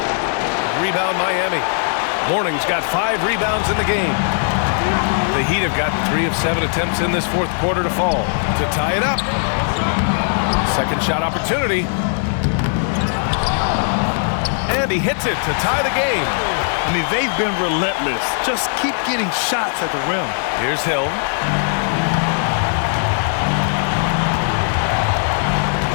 Rebound Miami. Morning's got 5 rebounds in the game. The Heat have gotten 3 of 7 attempts in this fourth quarter to fall. To tie it up. Second shot opportunity. And he hits it to tie the game. I mean, they've been relentless. Just keep getting shots at the rim. Here's Hill.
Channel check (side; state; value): right; silent; digital silence